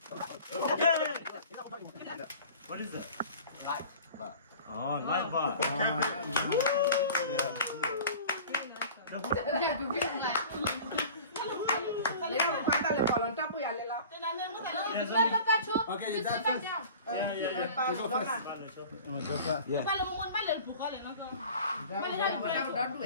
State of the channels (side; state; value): both; inverted; correlation -0.41